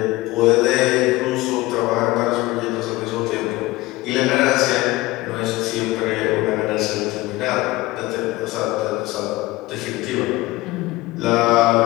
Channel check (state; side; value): quieter; right; 19.5 dB